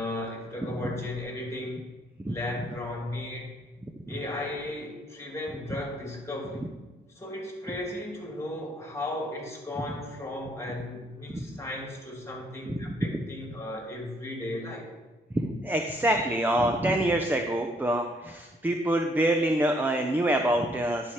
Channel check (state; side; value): normal; both; correlation 0.67